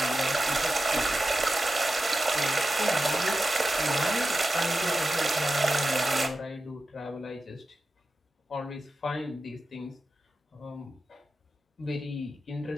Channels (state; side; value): normal; both; correlation 0.92